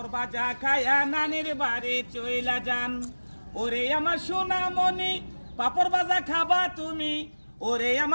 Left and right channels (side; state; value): both; inverted; correlation -1.00